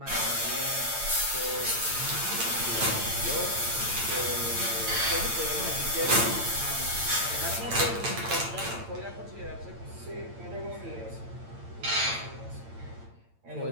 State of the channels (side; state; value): left; late; 8.8 ms